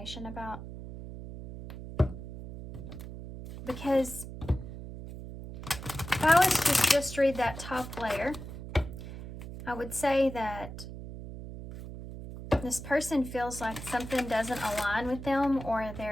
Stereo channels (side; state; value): right; noise; hum, 11 dB below the sound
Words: about, because if I was to just read that top layer, I would say that this person feels like something doesn't align with them, or